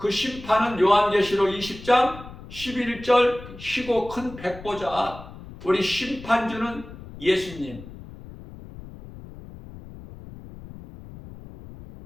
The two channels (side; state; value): left; noise; rumble, 15 dB below the sound